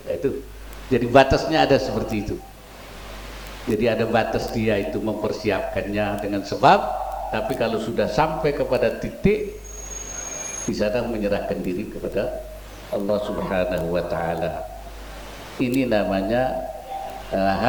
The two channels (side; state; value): both; identical; correlation 1.00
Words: itu. Jadi batasnya ada seperti itu. Jadi ada batas dia itu mempersiapkannya dengan sebab, tapi kalau sudah sampai kepada titik, di sana menyerahkan diri kepada Allah Subhanahu wa ta'ala. Ini namanya